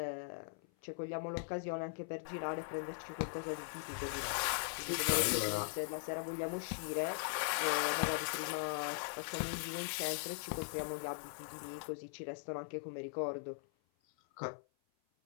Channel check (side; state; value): right; silent; 51 dB below the other